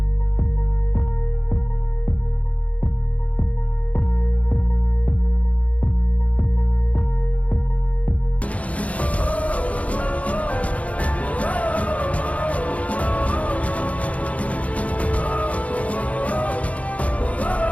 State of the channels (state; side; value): late; right; 0.066 ms